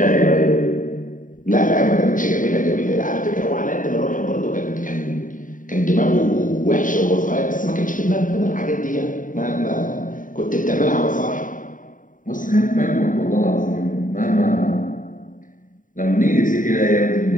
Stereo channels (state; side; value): late; right; 0.38 ms